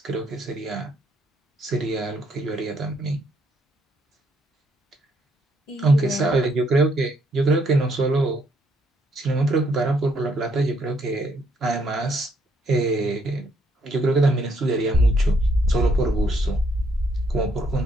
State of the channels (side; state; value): both; normal; correlation 0.71